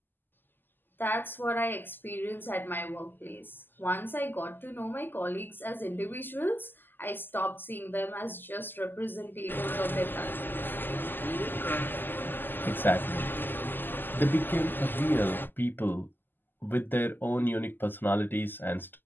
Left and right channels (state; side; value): late; right; 0.092 ms